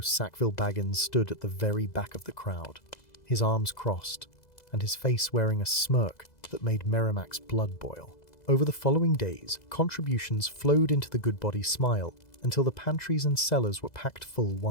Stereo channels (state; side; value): late; right; 2.0 ms